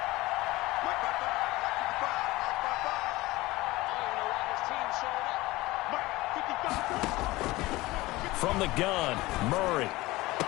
From the gun, Murray.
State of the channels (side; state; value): right; quieter; 19.7 dB